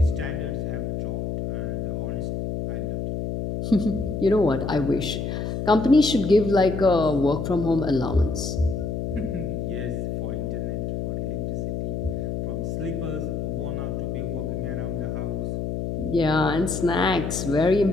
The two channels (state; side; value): noise; left; hum, 3 dB below the sound